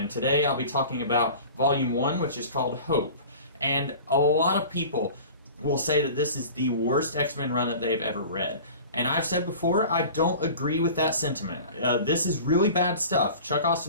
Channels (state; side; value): inverted; both; correlation -0.40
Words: today I'll be talking about Volume 1, which is called Hope. And a lot of people will say that this is the worst X-Men run that they've ever read. And I've said before, I don't agree with that sentiment. This is really bad stuff. Chuck